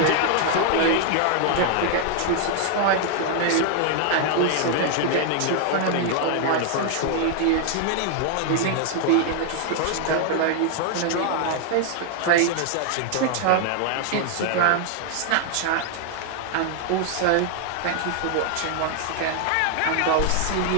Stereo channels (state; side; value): different; both; correlation 0.00